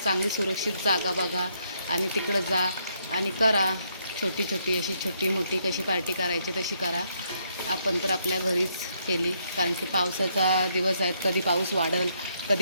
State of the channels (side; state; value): both; inverted; correlation -0.74